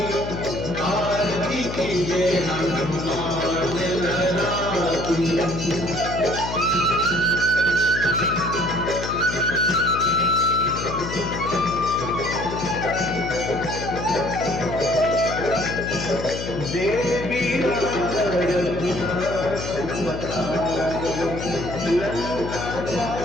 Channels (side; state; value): left; noise; hum, 6 dB below the sound